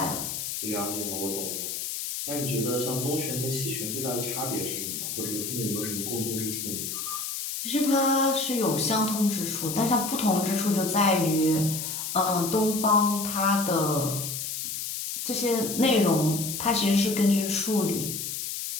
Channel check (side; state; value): left; noise; hiss, 4 dB below the sound